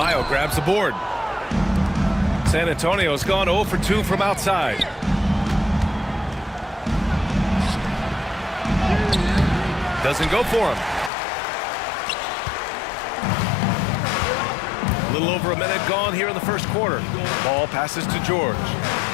grabs the board. San Antonio's gone 0 for 2 from outside. Doesn't go for him. A little over a minute gone here in the first quarter. Ball passes to George.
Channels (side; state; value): right; drops out; at 11.1 s